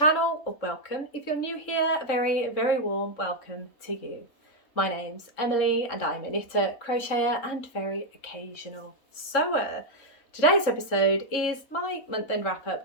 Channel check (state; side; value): late; right; 3.6 ms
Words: or welcome if you're new here, a very warm welcome to you. My name's Emily and I'm a knitter, crocheter and very occasional sewer. Today's episode is my month-end